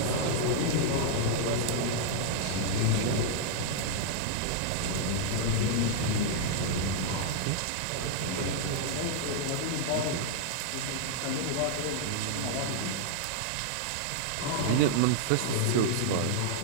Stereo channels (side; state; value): both; different; correlation -0.01